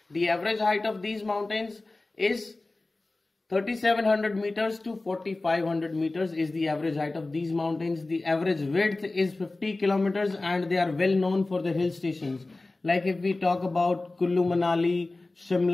The average height of these mountains is 3700 meters to 4500 meters is the average height of these mountains. The average width is 50 kilometers and they are well known for the hill stations. Like if we talk about Kullu Manali,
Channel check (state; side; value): quieter; right; 3.1 dB